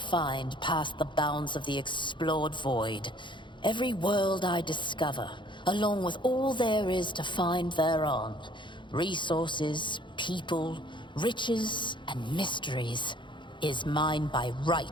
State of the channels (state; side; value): late; right; 0.23 ms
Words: past the bounds of the explored void. Every world I discover, along with all there is to find thereon, resources, people, riches, and mysteries, is mine by